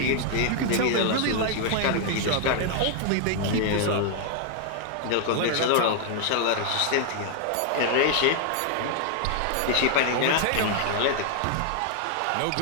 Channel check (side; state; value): both; different; correlation 0.00